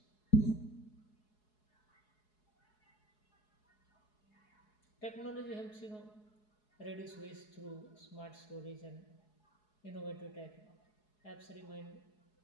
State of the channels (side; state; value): right; late; 4.7 ms